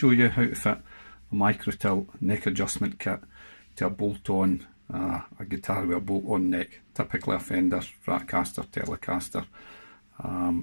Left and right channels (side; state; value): both; inverted; correlation -1.00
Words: you how to fit a micro-tilt neck adjustment kit to a bolt-on, a guitar with a bolt-on neck, typically a Fender, Stratocaster, Telecaster,